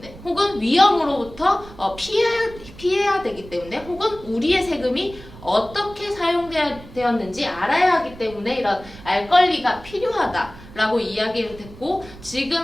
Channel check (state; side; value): noise; right; rumble, 18 dB below the sound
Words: 혹은 위험으로부터 피해야 되기 때문에, 혹은 우리의 세금이 어떻게 사용되었는지 알아야 하기 때문에 이런 알 권리가 필요하다라고 이야기를 했고, 지금